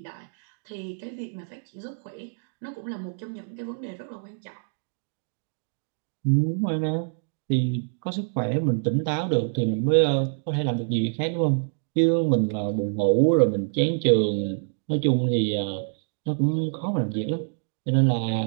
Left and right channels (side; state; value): left; silent; digital silence